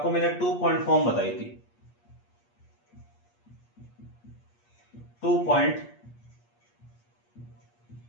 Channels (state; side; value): late; right; 8.4 ms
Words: मैंने 2 पॉइंट फॉर्म बताई थी, 2 पॉइंट